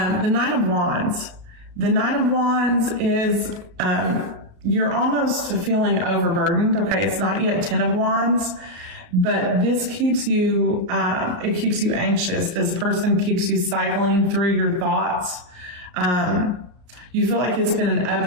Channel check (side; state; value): left; late; 34 ms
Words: Nine of Wands. The Nine of Wands is you're almost feeling overburdened. Okay, it's not yet 10 of Wands, but this keeps you it keeps you anxious. This person keeps you cycling through your thoughts. You feel like it's been an